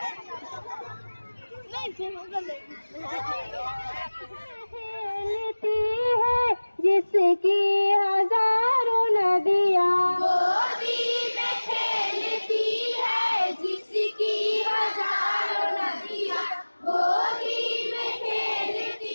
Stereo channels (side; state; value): both; inverted; correlation -1.00